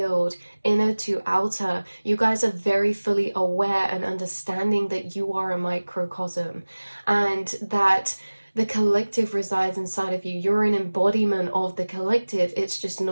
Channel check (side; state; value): both; inverted; correlation -1.00